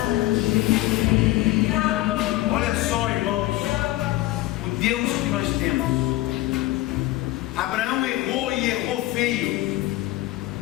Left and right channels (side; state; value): right; quieter; 17.6 dB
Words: Olha só, irmãos, o Deus que nós temos. Abraão errou e errou feio.